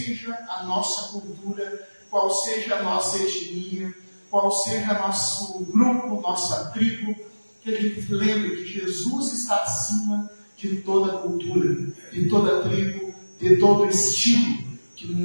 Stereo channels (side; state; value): both; inverted; correlation -1.00